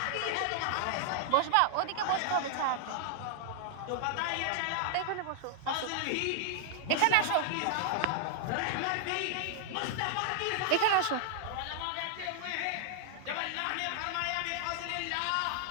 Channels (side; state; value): both; different; correlation 0.00